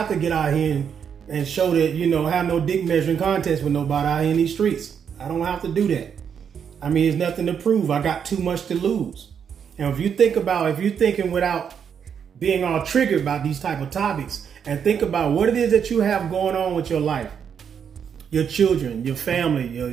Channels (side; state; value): left; quieter; 7.5 dB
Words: to get out here and show that, you know, have no dick measuring contest with nobody out here in these streets. I don't have to do that. I mean, there's nothing to prove. I got too much to lose. And if you're thinking without being all triggered about these type of topics, and think about what it is that you have going on with your life, your children, your family,